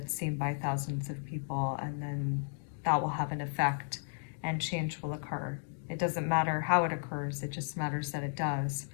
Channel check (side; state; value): right; silent; 55 dB below the other